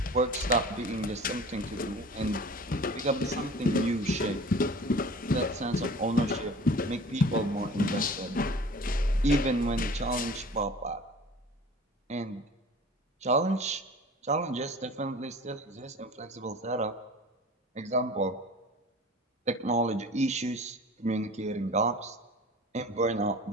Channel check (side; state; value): both; normal; correlation 0.42